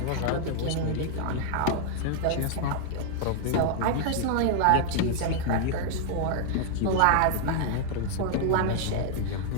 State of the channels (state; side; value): different; both; correlation -0.01